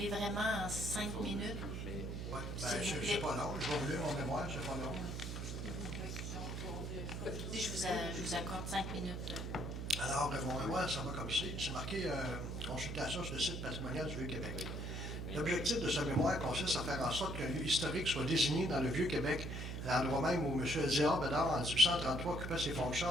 vraiment en 5 minutes. Oui, c'est pas long. Je vais vous lire mon mémoire, c'est pas long. Je vous accorde 5 minutes. Alors, mon mémoire, ça va comme ci. C'est marqué consultation sur le site patrimonial du Vieux-Québec. L'objectif de ce mémoire consiste à faire en sorte qu'un lieu historique soit désigné dans le Vieux-Québec, à l'endroit même où M. Elzéar Bédard, en 1833, occupait ses fonctions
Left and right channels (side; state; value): right; noise; hum, 5 dB below the sound